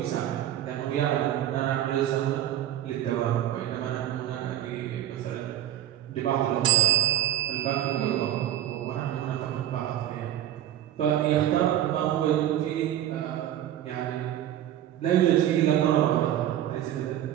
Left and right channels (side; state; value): left; quieter; 12.2 dB